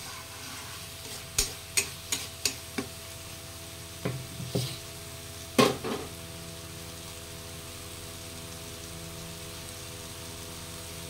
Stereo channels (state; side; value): identical; both; correlation 1.00